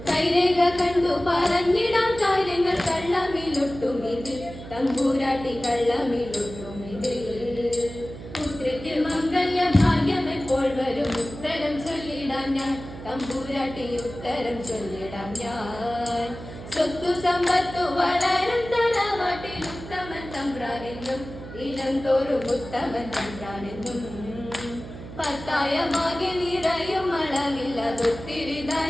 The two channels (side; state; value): right; noise; hum, 13 dB below the sound